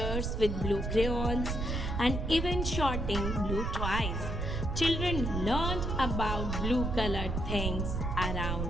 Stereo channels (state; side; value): noise; right; rumble, 2 dB below the sound